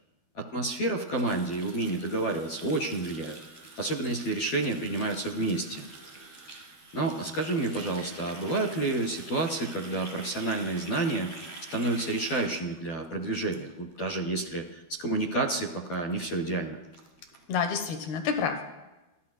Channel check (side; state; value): right; late; 12 ms